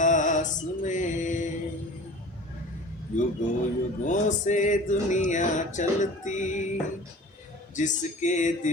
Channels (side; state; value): both; normal; correlation 0.41